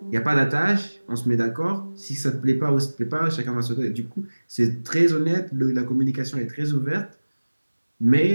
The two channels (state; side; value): inverted; both; correlation -1.00